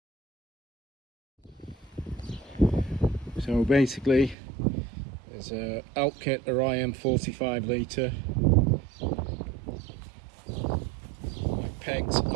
So basically, there's a elk kit Orion 45 litre. My pegs,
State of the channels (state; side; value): drops out; left; at 4.4 s